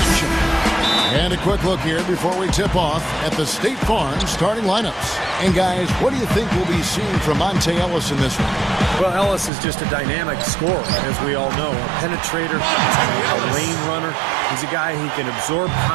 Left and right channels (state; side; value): drops out; left; at 9.5 s